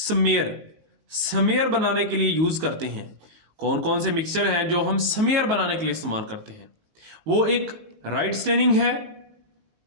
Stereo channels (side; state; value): left; late; 19 ms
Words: बनाने के लिए यूज करते हैं। कौन कौन से मिक्सचर हैं जो हम स्मेयर बनाने के लिए इस्तेमाल करते हैं? वो एक राइट स्टेनिंग है,